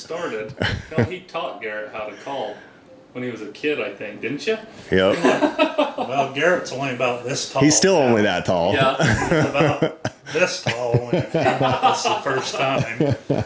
he taught Garrett how to call when he was a kid, I think, didn't you? Yep. Well, Garrett's only about this tall. He's still only that tall. Yeah. He's about this tall when he came with us the first time.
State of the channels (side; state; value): both; identical; correlation 1.00